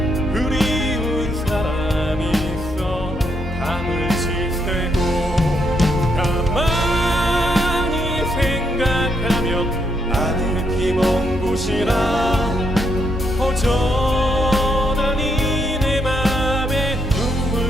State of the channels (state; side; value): normal; both; correlation 0.77